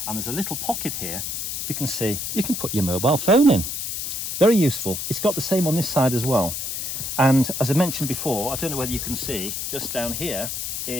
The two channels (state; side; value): noise; left; hiss, 4 dB below the sound